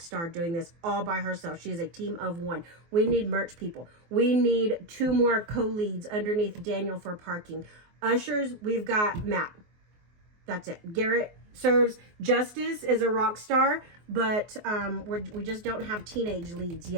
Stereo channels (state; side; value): late; left; 24 ms